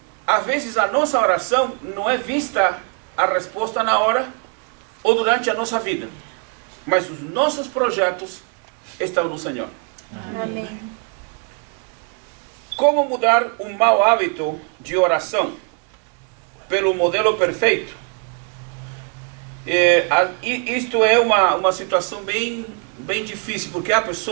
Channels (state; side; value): quieter; left; 35.6 dB